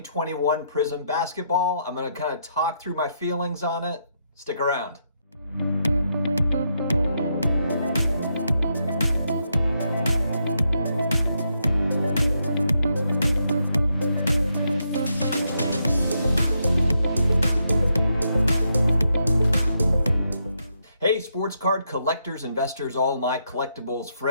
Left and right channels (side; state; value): both; inverted; correlation -0.79